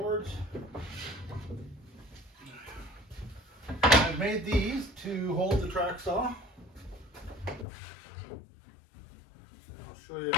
I've made these to hold the track saw. I'll show you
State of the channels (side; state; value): right; drops out; at 7.7 s